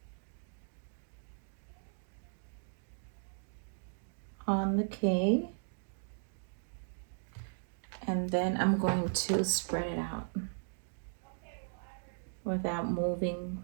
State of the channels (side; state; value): left; silent; digital silence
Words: on the K, and then I'm going to spread it out without moving